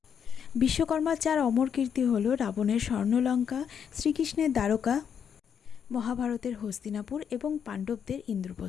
বিশ্বকর্মার 4 অমর কীর্তি হল রাবণের স্বর্ণলঙ্কা, শ্রীকৃষ্ণের দ্বারকা, মহাভারতের হস্তিনাপুর এবং পাণ্ডবদের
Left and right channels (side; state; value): right; quieter; 7.7 dB